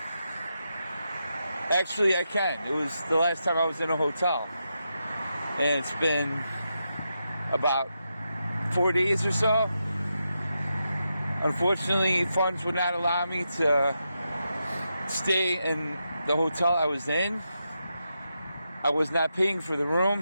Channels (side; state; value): both; inverted; correlation -0.86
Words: Actually, I can. It was the last time I was in a hotel. And it's been about 4 days or so. Unfortunately, funds would not allow me to stay in the hotel I was in. I was not paying for the